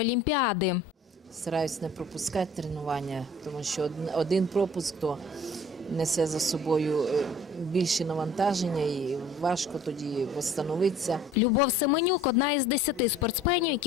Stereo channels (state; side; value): normal; both; correlation 0.50